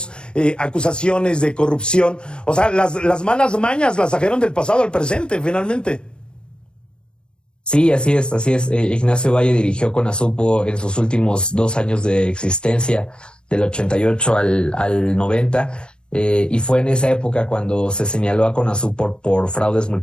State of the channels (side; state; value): right; late; 0.054 ms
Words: acusaciones de corrupción. O sea, las malas mañas las trajeron del pasado al presente, finalmente. Sí, así es, así es. Ignacio Valle dirigió CONASUPO en sus últimos 2 años de existencia, del 88 al 90, y fue en esa época cuando se señaló a CONASUPO por fraudes